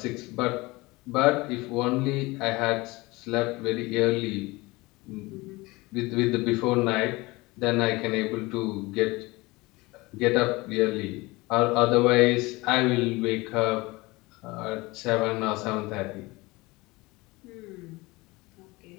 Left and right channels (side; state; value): right; quieter; 22.5 dB